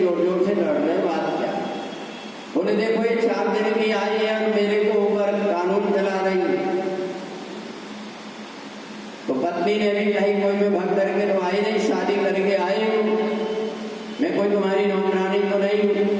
जोर से लड़ रहे, बात क्या। बोले देखो ये 4 दिन की आई है और मेरे को ऊपर कानून चला रही है। तो पत्नी ने भी कही कोई मैं भग करके तो आई नहीं, शादी करके आई हूँ, मैं कोई तुम्हारी नौकरानी तो नहीं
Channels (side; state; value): both; identical; correlation 1.00